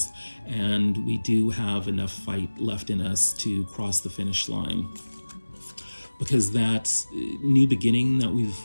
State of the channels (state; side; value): inverted; both; correlation -1.00